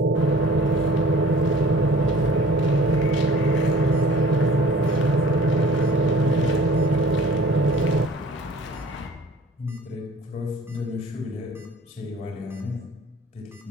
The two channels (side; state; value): both; normal; correlation 0.48